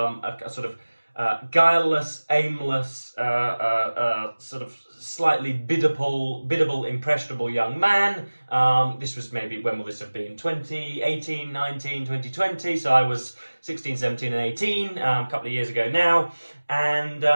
sort of guileless, aimless, sort of slightly biddable, impressionable young man. This was maybe, when will this have been? 2018, 19, 2020. So I was 16, 17 and 18, a couple of years ago now. And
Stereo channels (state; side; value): inverted; both; correlation -1.00